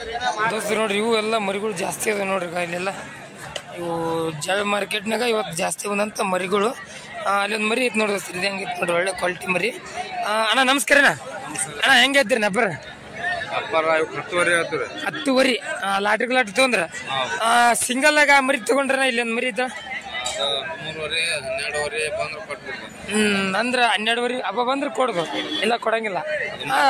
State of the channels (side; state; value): both; identical; correlation 1.00